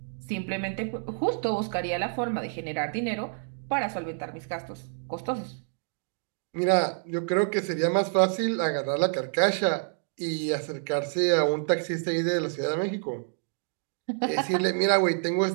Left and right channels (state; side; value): silent; left; 59 dB below the other